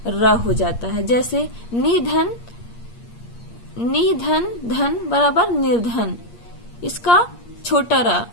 र हो जाता है। जैसे निधन, धन बराबर निर्धन, इसका छोटा र,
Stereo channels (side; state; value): right; late; 8.5 ms